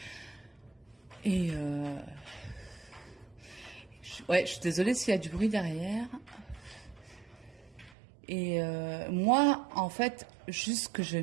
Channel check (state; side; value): drops out; left; at 8.0 s